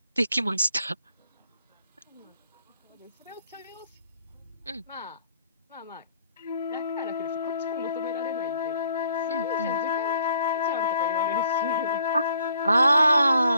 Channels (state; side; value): inverted; both; correlation -0.64